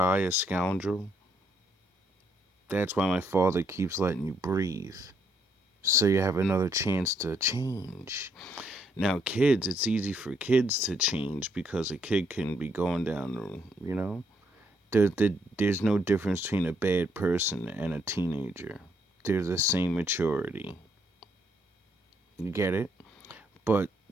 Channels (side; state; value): both; normal; correlation 0.72